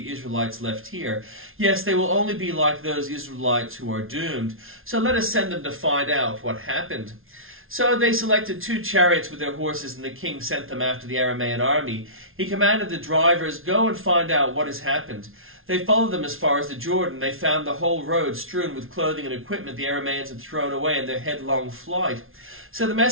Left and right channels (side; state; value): left; late; 0.61 ms